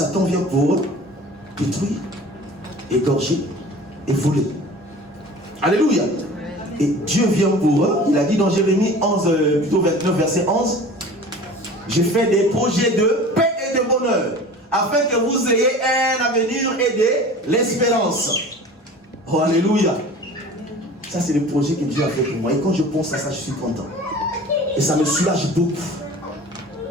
vient pour détruire, égorger et voler. Alléluia. Et Dieu vient pour eux. Il a dit dans Jérémie 11, plutôt 29, verset 11, je fais des projets de paix et de bonheur, afin que vous ayez un avenir et de l'espérance. Oh, alléluia. Ça, c'est le projet que Dieu a fait pour moi. Et quand je pense à ça, je suis content. Et ça me soulage beaucoup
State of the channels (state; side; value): normal; both; correlation 0.41